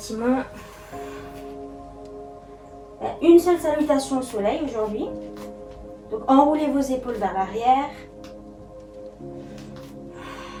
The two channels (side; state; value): both; identical; correlation 1.00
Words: Une seule salutation au soleil aujourd'hui. Donc enroulez vos épaules vers l'arrière.